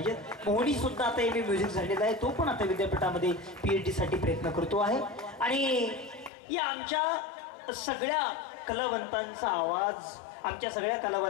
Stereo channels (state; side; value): drops out; right; at 6.3 s